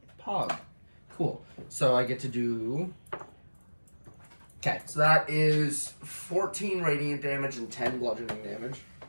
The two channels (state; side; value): inverted; both; correlation -1.00